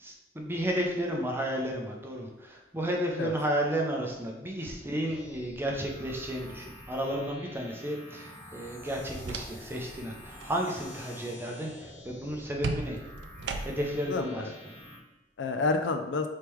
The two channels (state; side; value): normal; both; correlation 0.46